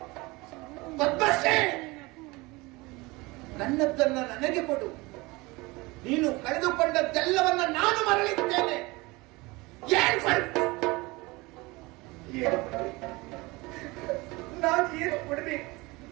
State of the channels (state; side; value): quieter; left; 23.3 dB